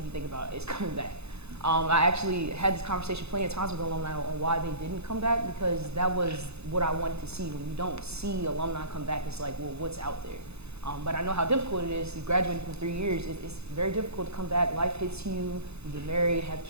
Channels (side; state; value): left; late; 0.80 ms